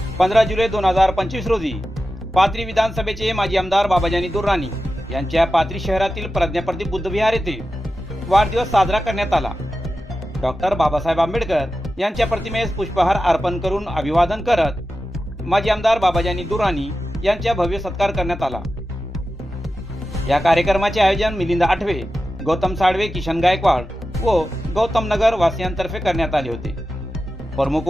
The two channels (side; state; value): both; normal; correlation 0.92